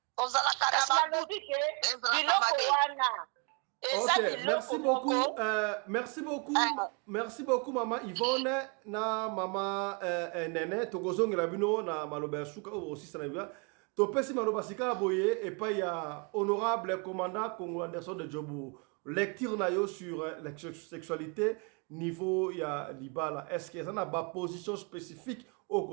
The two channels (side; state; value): left; quieter; 34.8 dB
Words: Ok, merci beaucoup mama Yvonne na mama Nene tokozongela bino na maloba ya suka aussi sana bia topesi maloba sika boye et pas ya honorable commandant Congo Anderson de Djobu lecture na yo sur la sexualité niveau ya libala est-ce que ça na ba position spécifique au